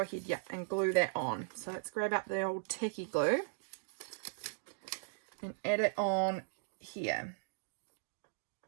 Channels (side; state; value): left; silent; digital silence